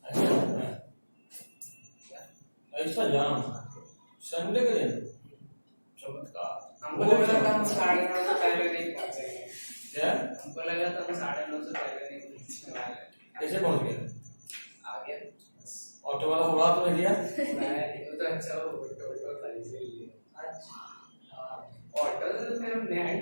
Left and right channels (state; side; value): inverted; both; correlation -1.00